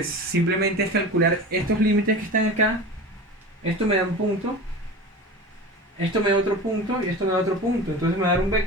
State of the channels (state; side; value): normal; both; correlation 0.33